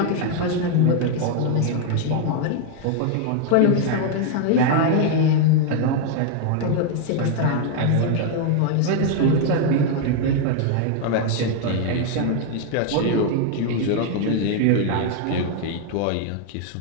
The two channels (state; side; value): different; both; correlation 0.00